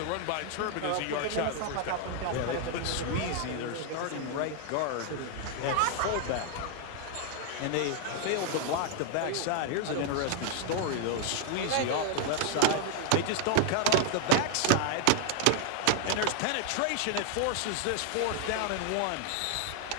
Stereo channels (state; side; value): different; both; correlation 0.00